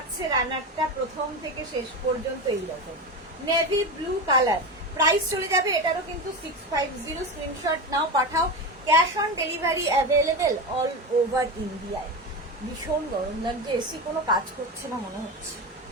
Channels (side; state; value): both; normal; correlation 0.21